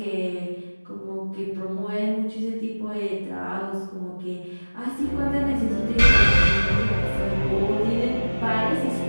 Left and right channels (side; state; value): both; inverted; correlation -1.00